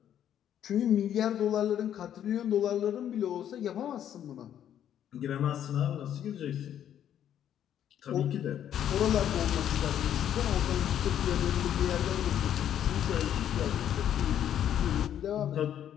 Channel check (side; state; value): right; quieter; 10.2 dB